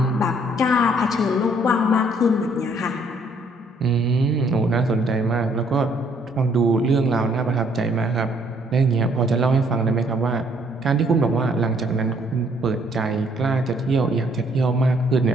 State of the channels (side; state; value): both; normal; correlation 0.65